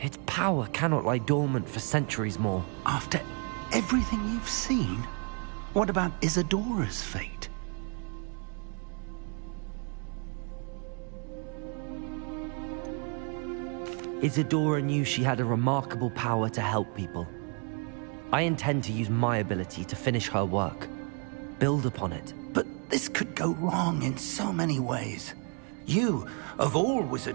power cannot lie dormant for centuries more. After everything you've seen? What about Isadora's fate? Isadora knew she had a remarkable power to help people. I intend to use my ability to finish her work. Build upon it. But this could go wrong in so many ways. You, of all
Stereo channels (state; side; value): quieter; left; 37.9 dB